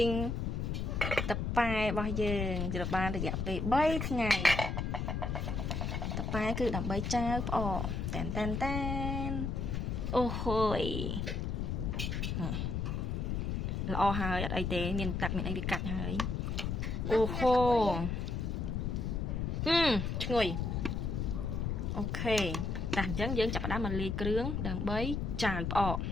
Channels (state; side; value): noise; left; rumble, 1 dB below the sound